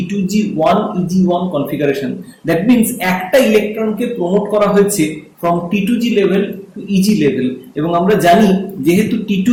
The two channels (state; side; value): identical; both; correlation 1.00